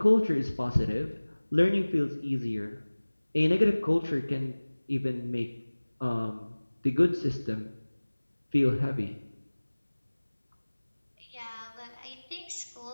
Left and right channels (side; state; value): both; inverted; correlation -1.00